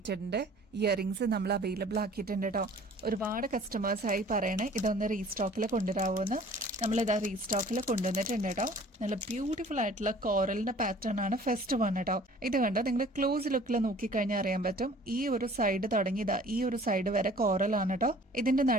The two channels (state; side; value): normal; both; correlation 0.50